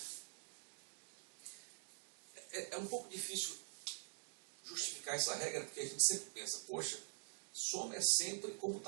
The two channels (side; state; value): left; silent; digital silence